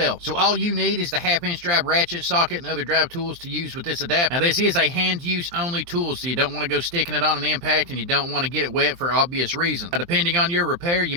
So all you need is the 1/2 inch drive ratchet, socket, and other drive tools to use with this adapter. Now this is a hand use only tool, so you don't want to go sticking it on an impact, and you don't want to get it wet for obvious reasons. Now, depending on your repair, you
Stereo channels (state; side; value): late; left; 23 ms